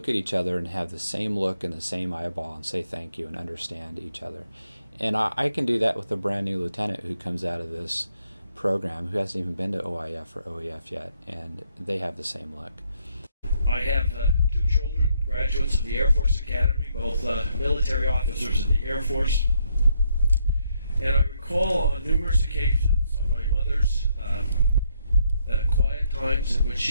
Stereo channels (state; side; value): inverted; both; correlation -0.74